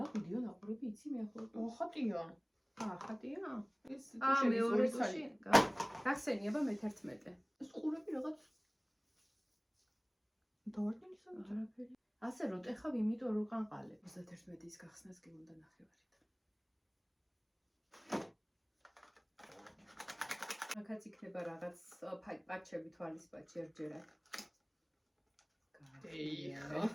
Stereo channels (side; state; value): both; identical; correlation 1.00